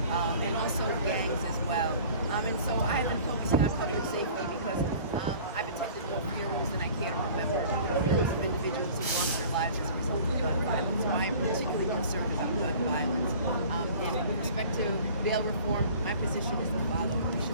also gangs as well. And so I have been focusing on public safety because I've attended more funerals than I care to remember. Funerals of individuals who lost their lives as a result of gun violence. So I am particularly concerned about gun violence. And with respect to bail reform, my position is the following. We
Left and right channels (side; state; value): both; inverted; correlation -0.46